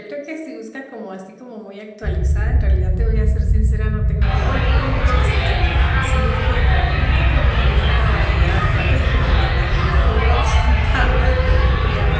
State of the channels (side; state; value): both; identical; correlation 1.00